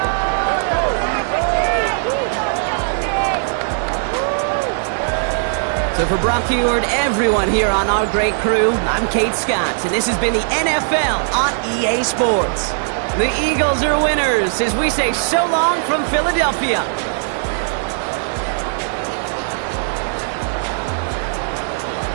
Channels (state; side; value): silent; left; digital silence